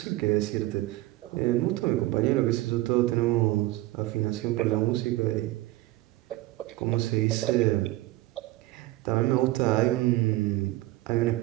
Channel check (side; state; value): left; quieter; 17.9 dB